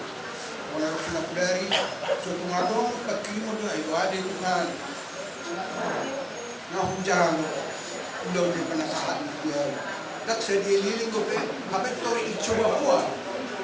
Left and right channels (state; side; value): identical; both; correlation 1.00